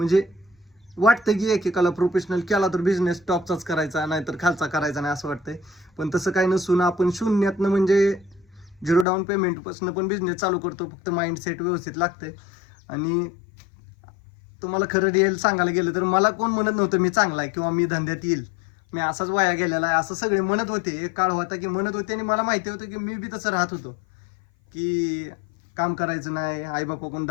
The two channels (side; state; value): right; drops out; at 9.1 s